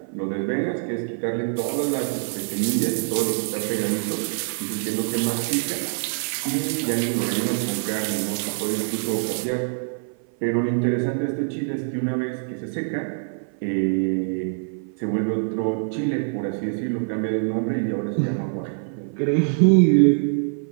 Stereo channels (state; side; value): silent; left; 56 dB below the other